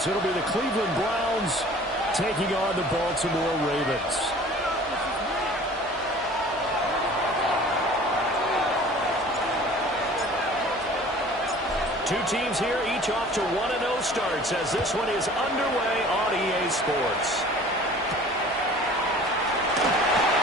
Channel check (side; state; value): both; normal; correlation 0.47